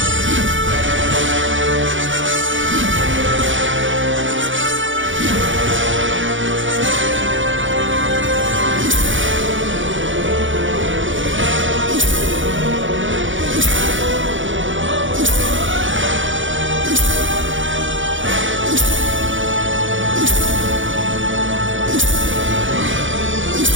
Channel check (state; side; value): late; left; 0.56 ms